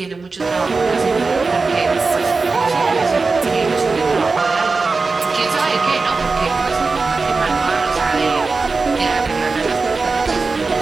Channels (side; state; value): left; quieter; 4.1 dB